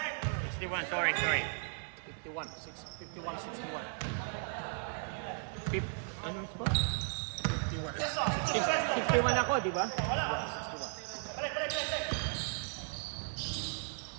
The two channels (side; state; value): left; silent; 54 dB below the other